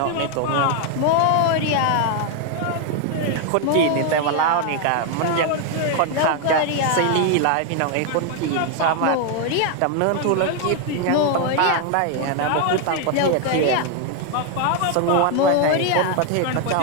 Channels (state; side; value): different; both; correlation 0.00